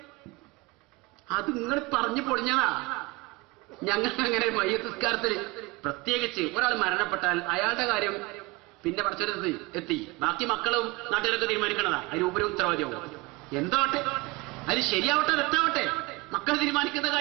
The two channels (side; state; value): left; quieter; 24.1 dB